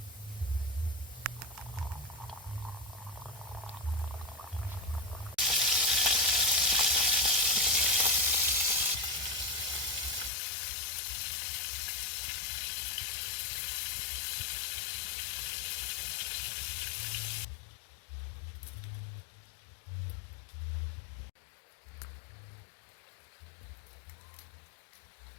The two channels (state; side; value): drops out; right; at 10.3 s